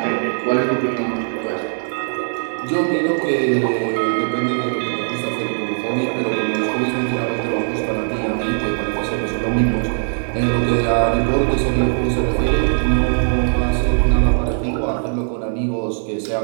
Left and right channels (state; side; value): silent; left; 66 dB below the other